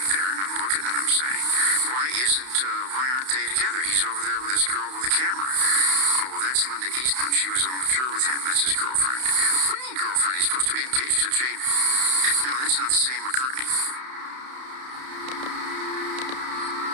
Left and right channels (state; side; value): late; left; 31 ms